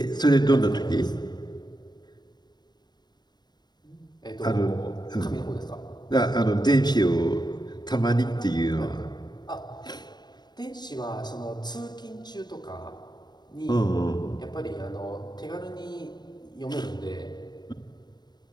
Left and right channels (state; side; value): late; right; 0.20 ms